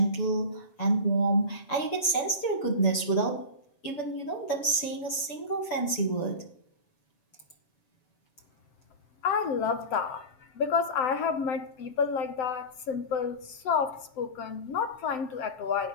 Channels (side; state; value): right; late; 6.9 ms